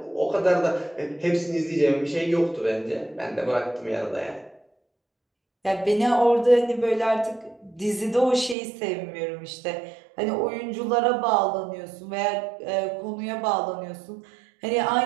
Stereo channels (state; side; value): drops out; left; at 8.6 s